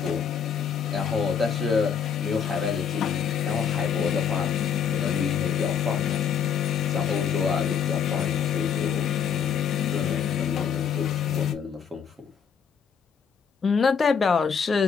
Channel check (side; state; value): right; quieter; 7.2 dB